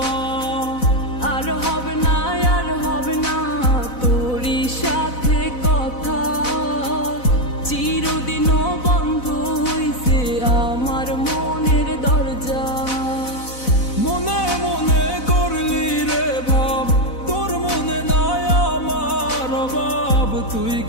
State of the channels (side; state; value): right; late; 4.0 ms